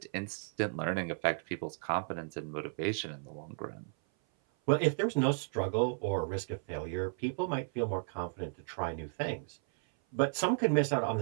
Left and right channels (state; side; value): silent; left; 55 dB below the other